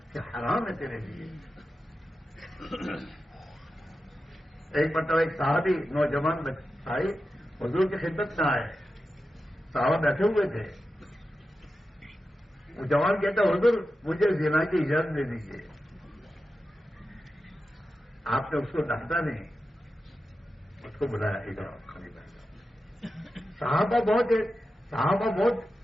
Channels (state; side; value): normal; both; correlation 0.91